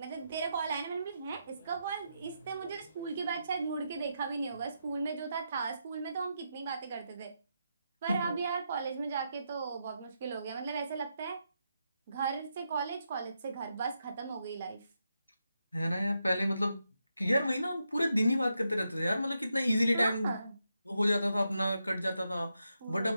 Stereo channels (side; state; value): both; inverted; correlation -0.84